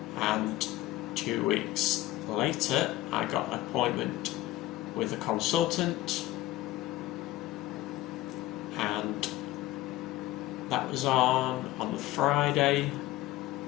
And 2 weeks later, I got an appointment with a consultant, and that was on the Friday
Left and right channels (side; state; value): right; quieter; 16.4 dB